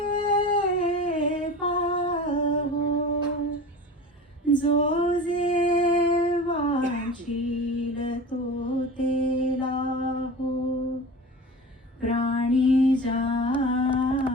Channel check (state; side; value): normal; both; correlation 0.34